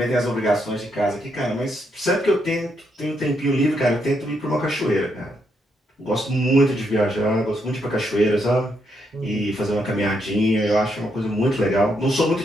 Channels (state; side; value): normal; both; correlation 0.78